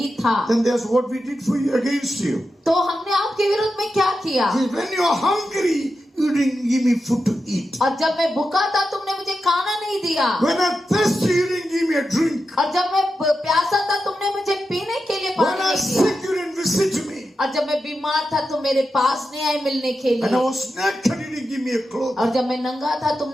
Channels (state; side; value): normal; both; correlation 0.89